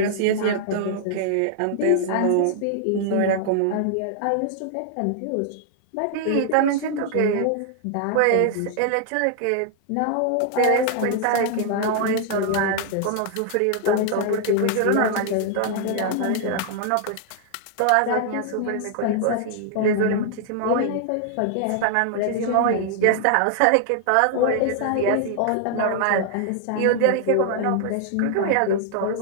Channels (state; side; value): different; both; correlation 0.00